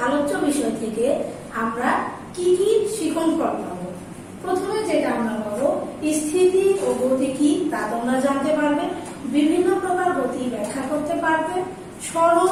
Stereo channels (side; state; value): both; identical; correlation 1.00